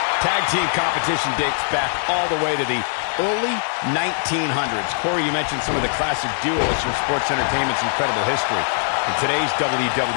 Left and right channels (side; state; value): right; silent; digital silence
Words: Tag team competition dates back all the way to the early 1900s. Corey, you mentioned some of the classic duos from sports entertainment's incredible history. In today's